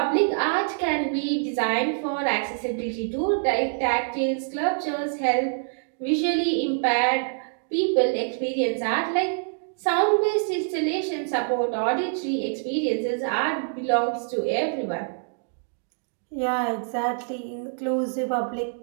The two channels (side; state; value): left; silent; digital silence